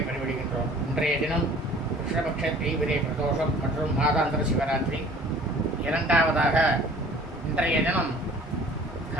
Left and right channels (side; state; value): both; normal; correlation 0.50